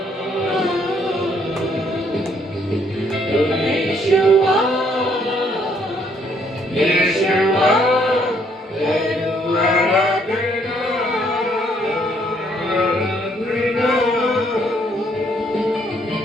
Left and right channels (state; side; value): normal; both; correlation 0.68